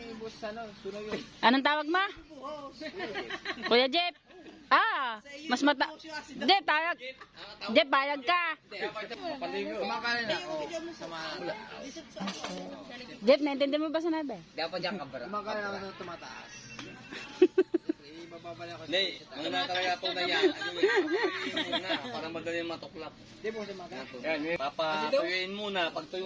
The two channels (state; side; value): identical; both; correlation 1.00